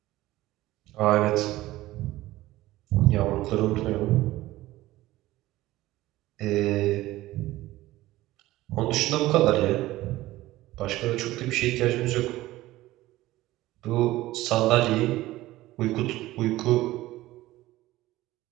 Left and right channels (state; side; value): quieter; left; 16.9 dB